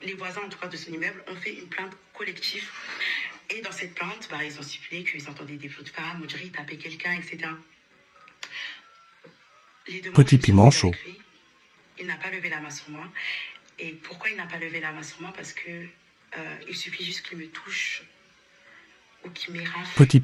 les voisins, en tout cas, de son immeuble, ont fait une plainte collective. Et dans cette plainte, ils ont stipulé qu'ils entendaient des flots de femmes, on dirait qu'ils tapaient quelqu'un, etc. Les deux mois, Petit piment chaud. lui, il n'a pas levé la main sur moi. Et pourquoi il n'a pas levé la main sur moi? Parce que il suffit juste qu'il me touche ou qu'il m'érafle. Petit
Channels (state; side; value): identical; both; correlation 1.00